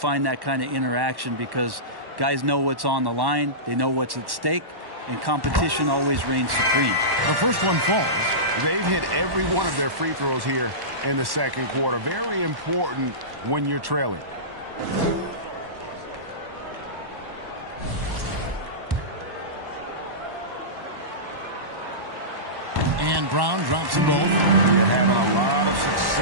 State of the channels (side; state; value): left; late; 1.1 ms